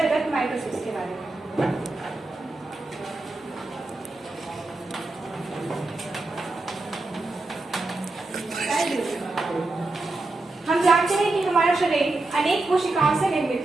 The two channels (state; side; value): quieter; left; 3.1 dB